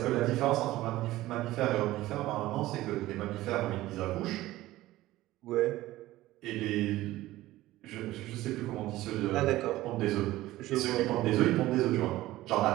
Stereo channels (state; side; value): quieter; left; 16.5 dB